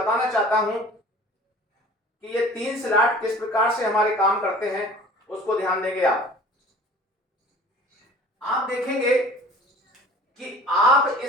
चाहता हूं कि ये 3 स्लॉट किस प्रकार से हमारे काम करते हैं, उसको ध्यान देंगे आप देखेंगे कि आप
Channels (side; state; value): both; normal; correlation 0.46